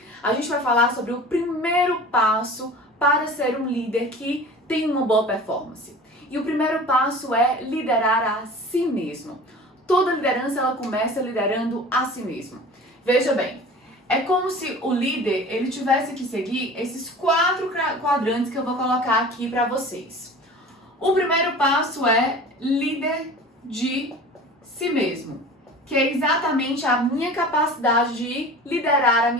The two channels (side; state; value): both; normal; correlation 0.39